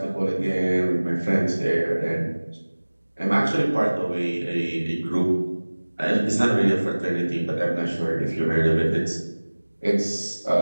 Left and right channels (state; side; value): inverted; both; correlation -1.00